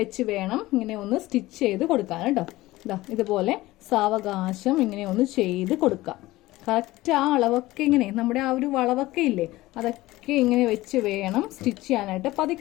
വേണം ഇങ്ങനെ ഒന്ന് സ്റ്റിച്ച് ചെയ്ത് കൊടുക്കാൻ കേട്ടോ. ഇതാ ഇതുപോലെ സാവകാശം ഇങ്ങനെ ഒന്ന് ചെയ്ത് കൊടുക്കാം. കറക്റ്റ് ആ അളവൊക്കെ ഇങ്ങനെ, നമ്മുടെ ആ ഒരു വളവൊക്കെ ഇല്ലേ, അതൊക്കെ ഇങ്ങനെ വെച്ച് വേണം സ്റ്റിച്ച് ചെയ്യാനായിട്ട്.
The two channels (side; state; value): right; quieter; 18.1 dB